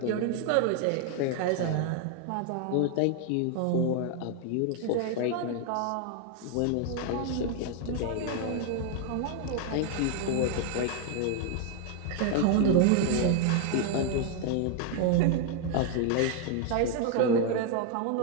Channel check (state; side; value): different; both; correlation 0.00